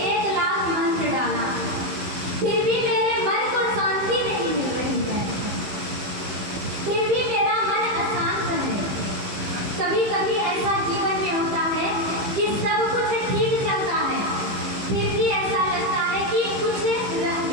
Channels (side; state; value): left; late; 15 ms